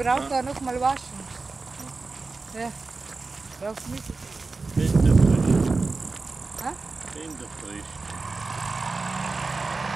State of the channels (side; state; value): left; quieter; 3.9 dB